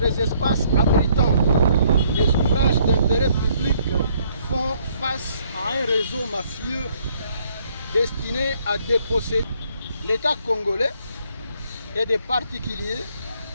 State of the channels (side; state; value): both; inverted; correlation -0.66